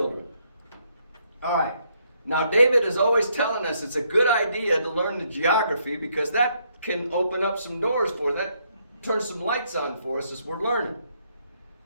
All right. Now, David is always telling us it's a good idea to learn the geography because that can open up some doors for us. That turns some lights on for us as we're learning.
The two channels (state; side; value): inverted; both; correlation -0.72